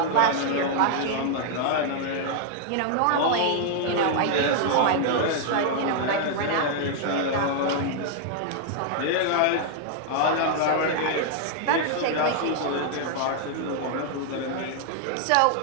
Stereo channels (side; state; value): both; different; correlation 0.00